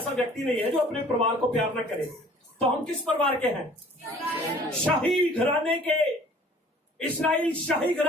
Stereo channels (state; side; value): normal; both; correlation 0.52